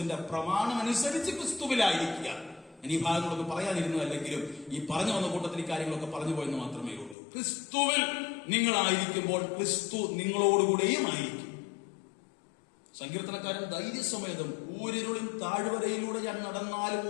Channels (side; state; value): right; drops out; at 7.2 s